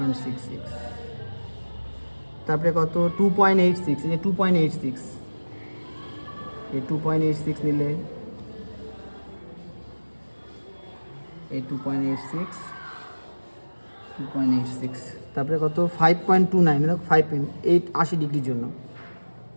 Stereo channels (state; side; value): inverted; both; correlation -1.00